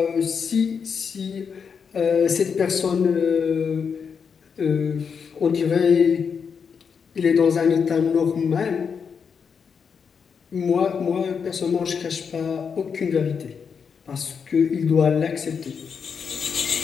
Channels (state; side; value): quieter; right; 6.3 dB